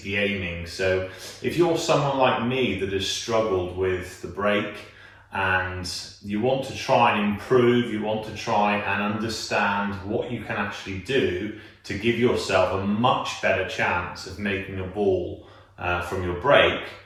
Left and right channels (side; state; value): both; identical; correlation 1.00